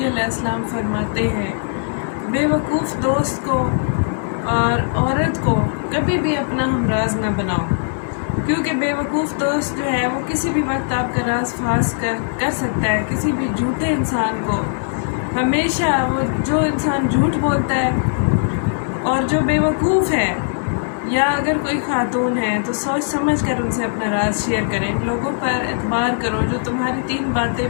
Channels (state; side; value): silent; right; digital silence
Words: अलैहिस्सलाम फरमाते हैं, बेवकूफ़ दोस्त को और औरत को कभी भी अपना हमराज न बनाओ, क्योंकि बेवकूफ़ दोस्त जो है वो किसी भी वक्त आपका राज फास कर सकता है। किसी भी झूठे इंसान को हमेशा वो जो इंसान झूठ बोलता है और जो बेवकूफ़ है, या अगर कोई खातून है तो सोच समझ कर उनसे अपना राज शेयर करें। लोगों पर एतबार करो जो तुम्हारी 3 बातें